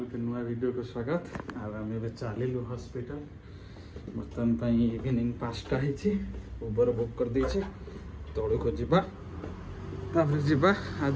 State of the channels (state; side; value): identical; both; correlation 1.00